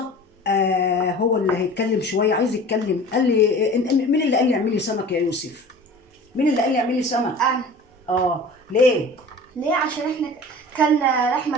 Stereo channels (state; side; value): normal; both; correlation 0.40